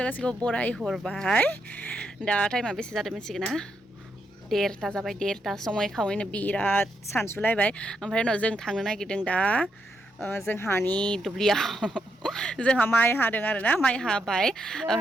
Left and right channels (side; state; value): both; normal; correlation 0.80